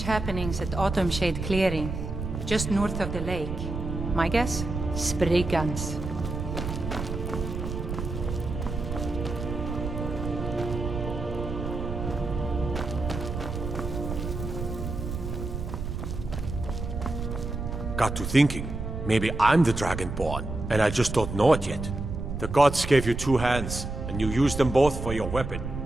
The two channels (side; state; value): right; noise; rumble, 5 dB below the sound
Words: happenings at Autumn Shade Clearing, just north of the lake. My guess? Spriggans. Got to thinking. Maybe I'm the Dragonborn, and I just don't know it yet. The gods gave you two hands, and you used them both for your weapon.